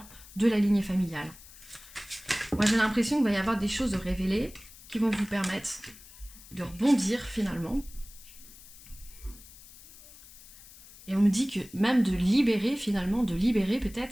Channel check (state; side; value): noise; left; hiss, 20 dB below the sound